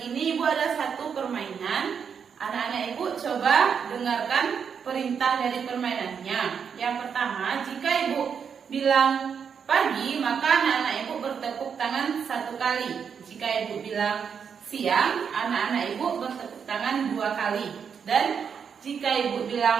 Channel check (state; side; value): quieter; left; 6.9 dB